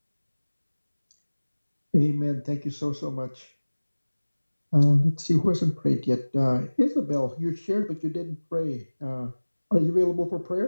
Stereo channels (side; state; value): both; inverted; correlation -1.00